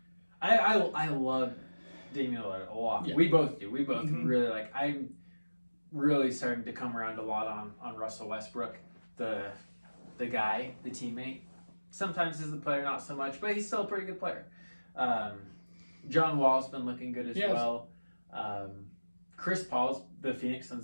I love Damian Lillard a lot. Yeah. We both do. We both really like. I'm really starting to come around a lot on Russell Westbrook, the guy, the teammate. Sometimes as the player, not so much, but he's still a pretty good player. John Wall's been looking good as well. Chris Paul's, the Phoenix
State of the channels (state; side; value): inverted; both; correlation -1.00